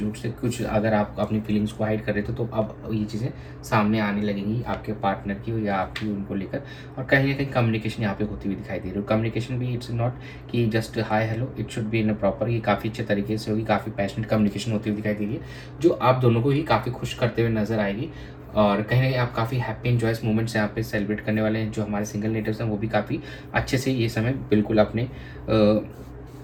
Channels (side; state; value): both; identical; correlation 1.00